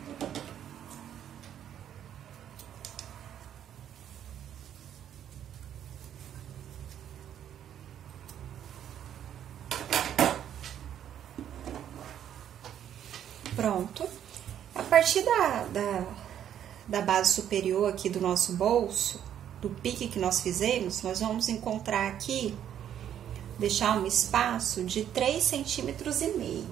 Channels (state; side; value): quieter; left; 10.0 dB